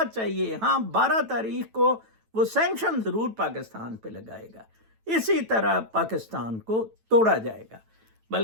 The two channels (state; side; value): late; left; 9.1 ms